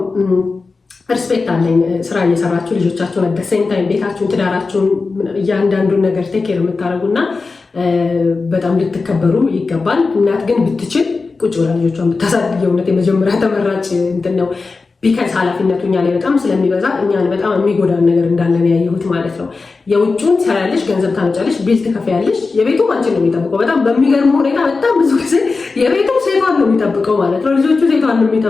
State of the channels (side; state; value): right; quieter; 4.1 dB